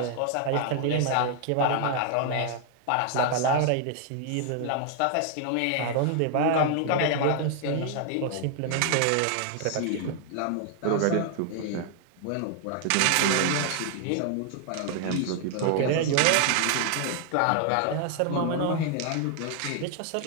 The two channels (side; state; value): both; different; correlation 0.00